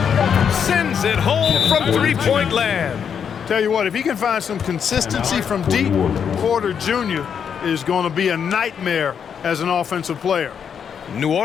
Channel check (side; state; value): right; quieter; 7.4 dB